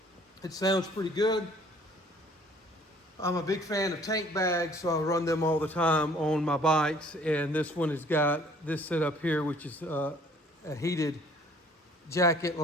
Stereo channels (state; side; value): normal; both; correlation 0.56